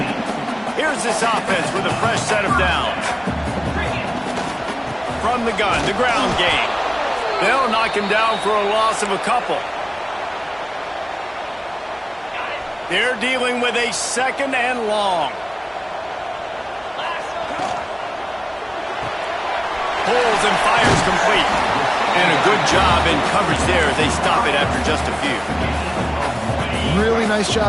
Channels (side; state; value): both; identical; correlation 1.00